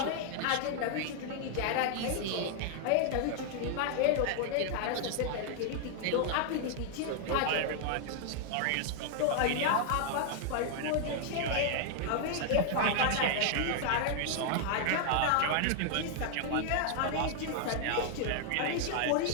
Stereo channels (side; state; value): both; different; correlation 0.00